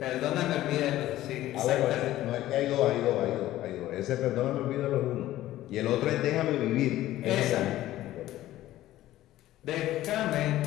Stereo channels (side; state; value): right; quieter; 14.7 dB